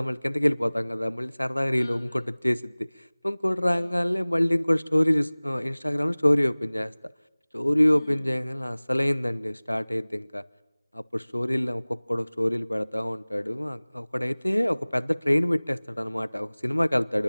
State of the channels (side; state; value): both; inverted; correlation -1.00